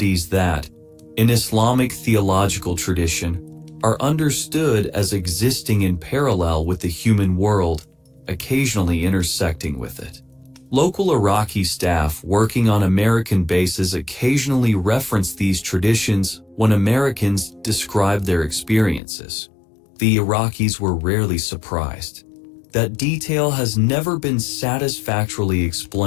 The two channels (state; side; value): drops out; right; at 19.0 s